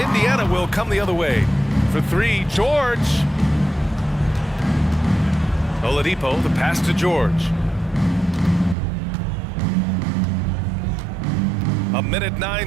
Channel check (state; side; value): drops out; left; at 8.8 s